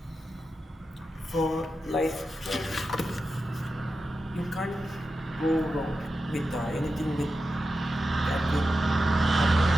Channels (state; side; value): normal; both; correlation 0.90